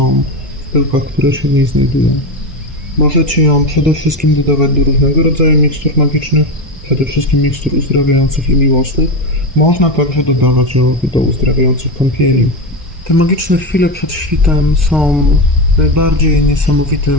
w pyłkach, które się w niej znajdują. Możecie ją przede wszystkim dodawać do różnego rodzaju mikstur magicznych, przede wszystkim mikstur uzdrawiających i miłosnych. Można także dodawać ją do uzdrawiających kąpieli. Te magiczne chwile przed świtem są najbardziej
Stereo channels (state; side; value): normal; both; correlation 0.16